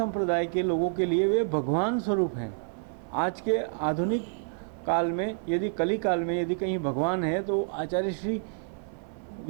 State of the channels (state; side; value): silent; left; 59 dB below the other